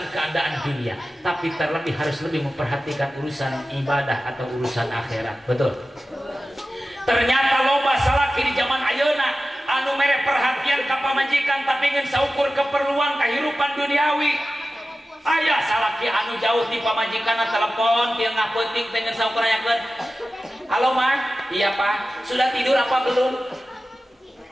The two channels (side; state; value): both; normal; correlation 0.94